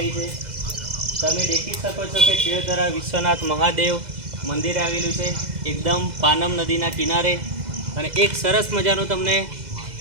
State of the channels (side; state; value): left; late; 2.0 ms